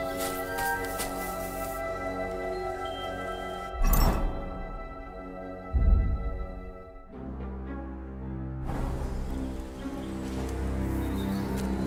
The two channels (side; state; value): both; identical; correlation 1.00